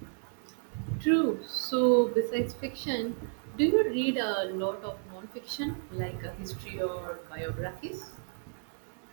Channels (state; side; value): silent; left; 56 dB below the other